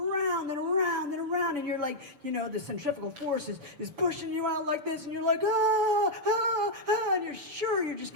and around and around, and you're like, the centrifugal force is pushing you out like this, and you're like, and you're sure you're just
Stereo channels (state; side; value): late; left; 6.9 ms